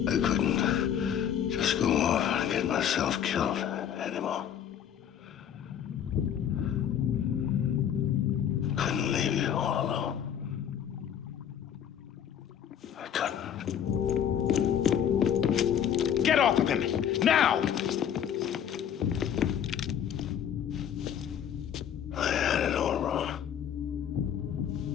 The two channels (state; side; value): quieter; right; 9.1 dB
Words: I couldn't just go off and get myself killed anymore. Couldn't leave you all alone. off of him! Now! I had it all wrong.